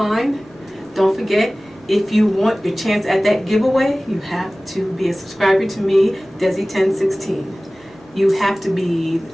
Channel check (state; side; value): normal; both; correlation 0.98